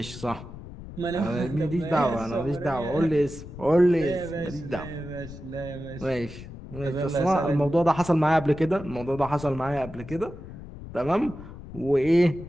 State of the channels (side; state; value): left; noise; rumble, 14 dB below the sound